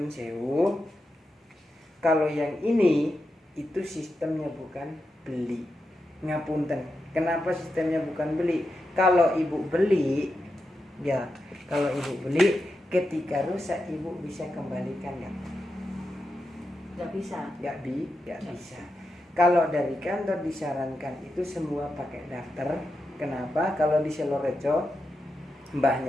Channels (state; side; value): normal; both; correlation 0.88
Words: sewu. Kalau yang ini itu sistemnya bukan beli. Ngapunten. Kenapa sistemnya bukan beli? Kalau Ibu beli, ya, kalau Ibu beli ketika rusak Ibu bisa kembalikan ya. Nggak bisa. Nggak bisa. Kalau dari kantor disarankan itu semua pakai daftar Kenapa? Kalau di Selorejo